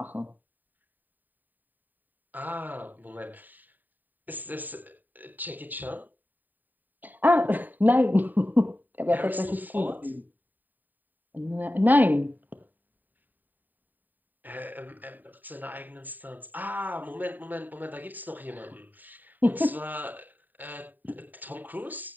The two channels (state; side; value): late; left; 0.088 ms